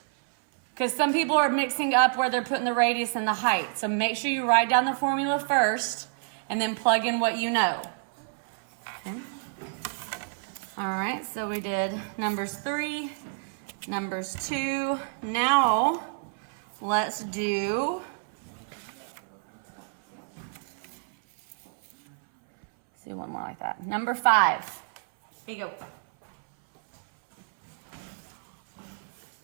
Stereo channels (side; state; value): left; silent; 59 dB below the other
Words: Because some people are mixing up where they're putting the radius and the height. So make sure you write down the formula first and then plug in what you know. Okay. All right, so we did numbers 3, numbers 2. Now let's do one more like that. Number 5. Here you go.